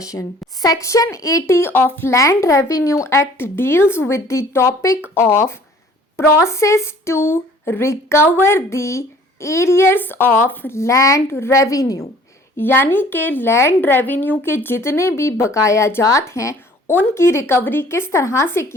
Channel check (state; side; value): normal; both; correlation 0.53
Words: Section 80 of Land Revenue Act deals with the topic of process to recover the arrears of land revenue. यानी कि land revenue के जितने भी बकाया जात हैं उनकी recovery किस तरह से